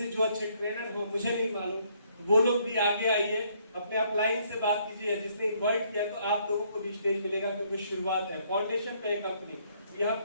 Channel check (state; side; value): inverted; both; correlation -0.67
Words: जो अच्छे ट्रेनर हो, मुझे नहीं मालूम, वो लोग भी आगे आइए, अपने अपलाइन से बात कीजिए, जिसने इन्वाइट किया तो आप लोगों को भी स्टेज मिलेगा, क्योंकि शुरुआत है, फाउंडेशन पे है कंपनी, यहाँ